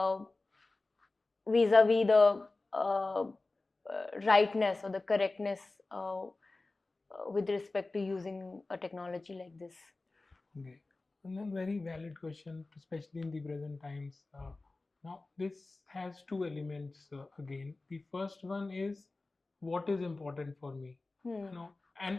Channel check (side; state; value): right; quieter; 3.3 dB